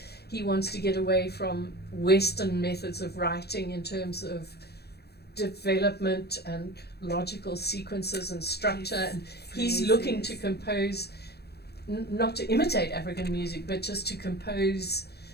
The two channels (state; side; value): late; right; 0.47 ms